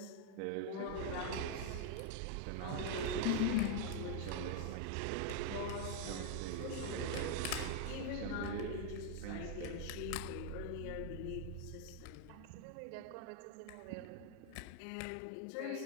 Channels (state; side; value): different; both; correlation 0.00